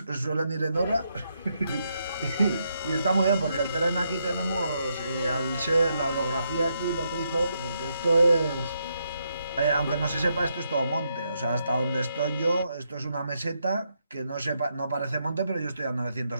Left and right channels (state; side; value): inverted; both; correlation -0.79